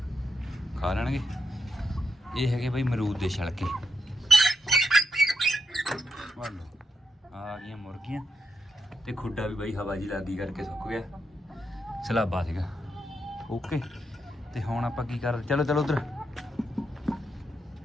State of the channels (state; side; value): normal; both; correlation 0.83